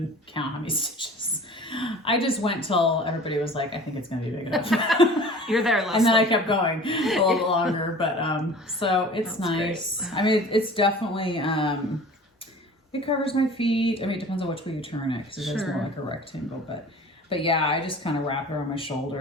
count how many stitches. I just went till everybody was like, I think it's going to be big enough. You're there, Leslie. And then I kept going a little bit longer, but so it's nice. Great. I mean, it's definitely, it covers my feet. I mean, it depends on which way you turn it, because it is more like a rectangle, but yeah, I just kind of wrap it around my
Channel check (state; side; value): normal; both; correlation 0.43